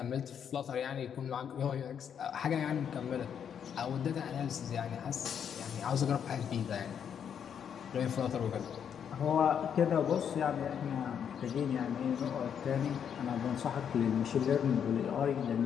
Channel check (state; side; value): quieter; right; 8.1 dB